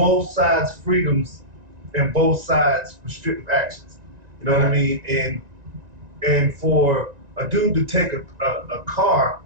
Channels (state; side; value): late; left; 1.9 ms